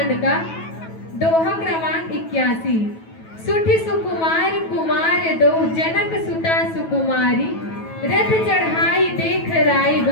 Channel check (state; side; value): late; right; 9.2 ms